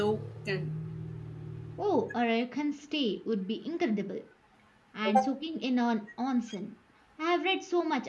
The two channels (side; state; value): both; identical; correlation 1.00